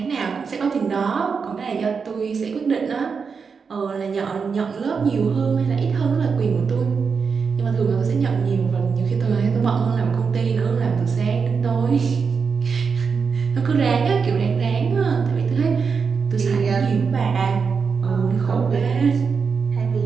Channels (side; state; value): left; quieter; 5.6 dB